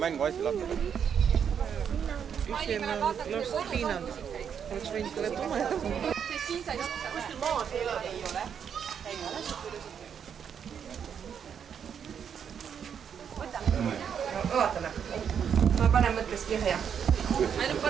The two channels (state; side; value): quieter; left; 7.8 dB